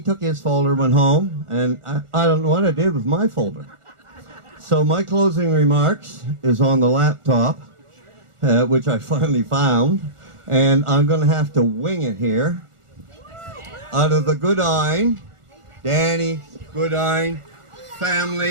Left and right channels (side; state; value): left; late; 1.4 ms